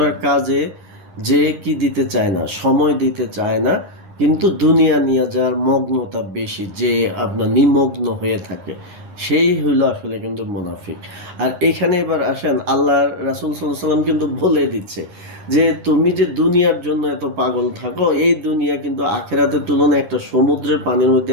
কাজে যে কি দিতে চায় না, সময় দিতে চায় না, কিন্তু দুনিয়া নিয়ে যার মগ্নতা বেশি, যে আপনার নিমগ্ন হয়ে থাকে, সেই হইলো আসলে কিন্তু মুনাফিক। আর এখানে এবার আসেন, আল্লাহ রাসূল সাল্লাল্লাহু আলাইহি ওয়াসাল্লাম কিন্তু বলে দিচ্ছে যে তুমি যে দুনিয়ার জন্য এত পাগল থাকো, এই দুনিয়া কিন্তু আখেরাতের তুলনায় একটা সমুদ্রের পানির মধ্যে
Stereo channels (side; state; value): left; late; 9.9 ms